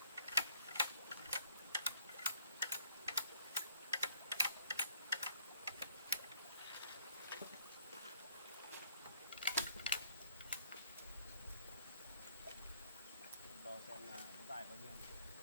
Đo xem là nó dài bao nhiêu.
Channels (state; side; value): inverted; both; correlation -0.63